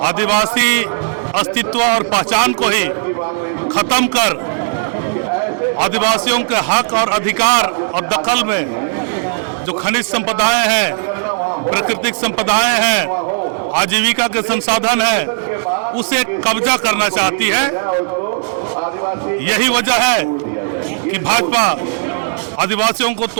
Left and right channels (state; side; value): silent; left; digital silence